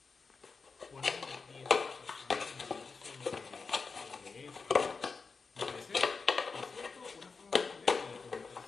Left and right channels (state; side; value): quieter; right; 4.7 dB